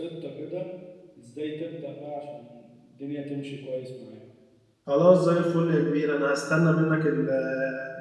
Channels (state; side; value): identical; both; correlation 1.00